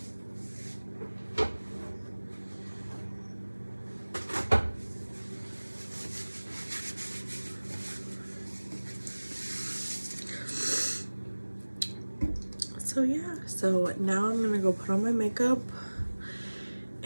So yeah, so now I'm gonna go put on my makeup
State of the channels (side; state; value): both; inverted; correlation -1.00